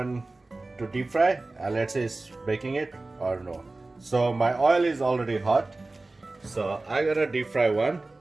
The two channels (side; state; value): left; quieter; 3.1 dB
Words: to deep fry, and let's say it's baking it or no. So my oil is already hot, so I'm gonna deep fry one,